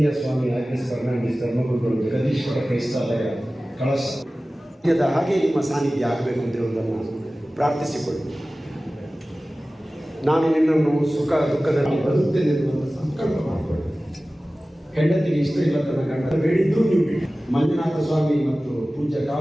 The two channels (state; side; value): normal; both; correlation 0.97